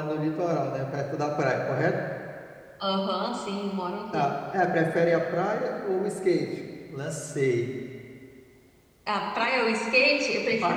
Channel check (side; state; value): both; identical; correlation 1.00